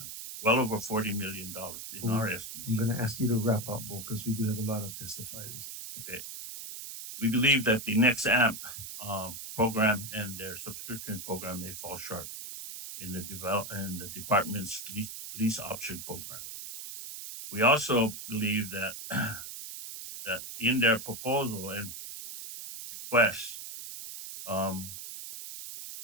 well over $40 million in our estimate. I'm gonna ask you to wrap up, Bo, because we do have a lot of testifiers. Okay. We believe that the next AMP program and their subscription program may fall short in the department's lease option program. We also believe that that in their proposal and request,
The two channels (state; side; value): noise; right; hiss, 9 dB below the sound